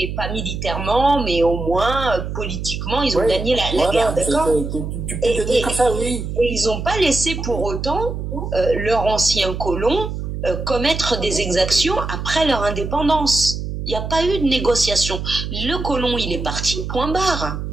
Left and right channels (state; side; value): noise; right; hum, 5 dB below the sound